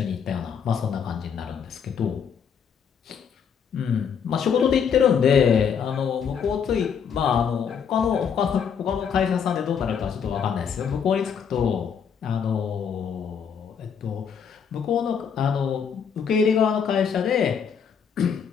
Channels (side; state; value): right; quieter; 7.1 dB